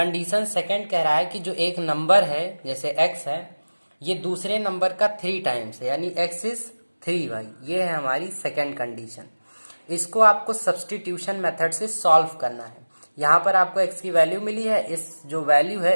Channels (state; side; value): inverted; both; correlation -1.00